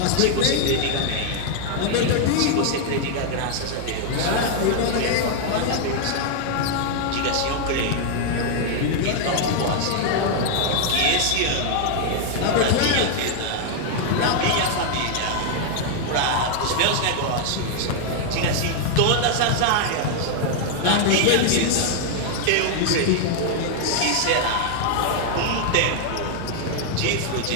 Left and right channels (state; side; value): different; both; correlation 0.00